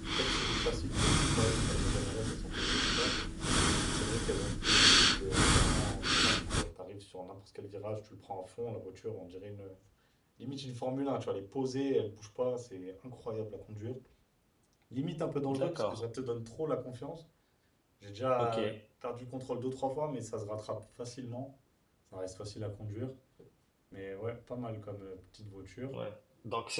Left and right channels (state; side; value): identical; both; correlation 1.00